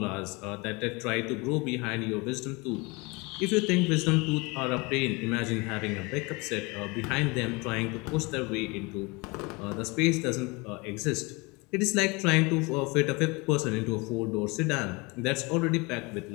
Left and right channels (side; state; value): right; quieter; 26.7 dB